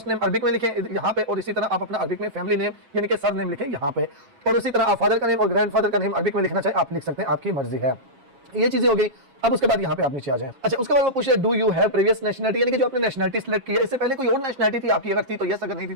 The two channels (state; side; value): late; left; 7.4 ms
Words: नेम अरबिक में लिखें यहाँ पे, और इसी तरह आप अपना अरबिक में फैमिली नेम यानी कि सर नेम लिखें यहाँ पे, और इसी तरह आप फादर का नेम और ग्रैंड फादर का नेम अरबिक में लिखना चाहिए, आप लिख सकते हैं, आपकी मर्जी है। ये चीजें हो गई। अब उसके बाद यहाँ पे आप नीचे आ जाएं। अच्छा, उसके बाद वो पूछे do you have previous nationality, यानी कि जो आपने नेशनलिटी सिलेक्ट किया इससे पहले कोई और नेशनलिटी थी आपकी, अगर थी तो यस, अगर नहीं थी